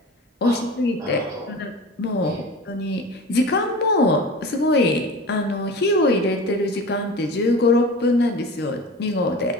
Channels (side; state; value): both; normal; correlation 0.35